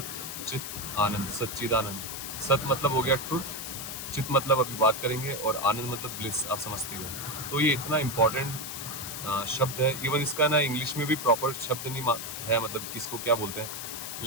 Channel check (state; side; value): noise; left; hiss, 7 dB below the sound